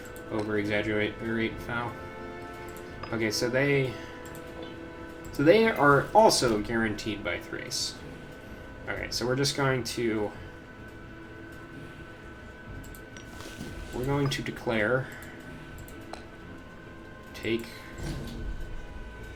over-exaggerate foul. Okay, so they are also guaranteed by Thrace. Okay, so we're just going to... We're going to declare... Take...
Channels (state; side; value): identical; both; correlation 1.00